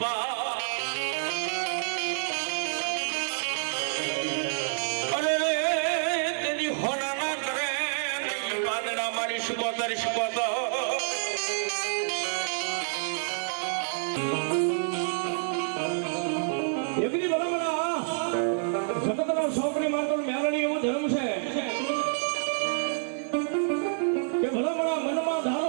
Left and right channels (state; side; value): silent; left; 59 dB below the other